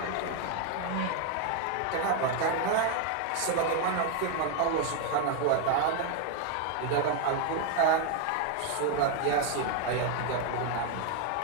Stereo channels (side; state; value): both; different; correlation 0.01